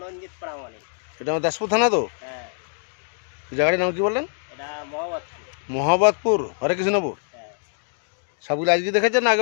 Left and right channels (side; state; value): right; silent; digital silence